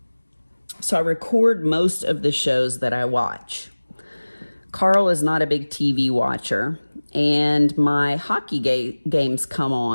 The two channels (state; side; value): inverted; both; correlation -1.00